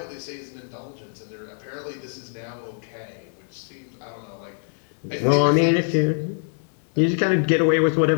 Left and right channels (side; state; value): right; silent; digital silence